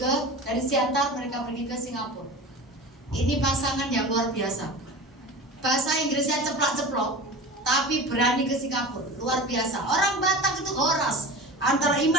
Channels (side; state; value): both; normal; correlation 0.34